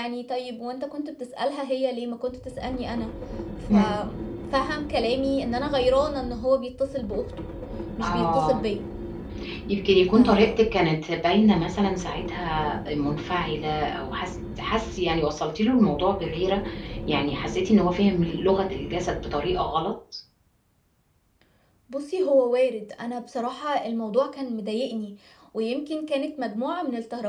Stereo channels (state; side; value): identical; both; correlation 1.00